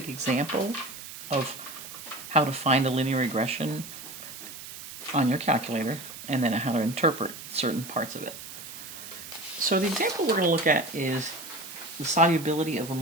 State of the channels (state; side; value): noise; right; hiss, 12 dB below the sound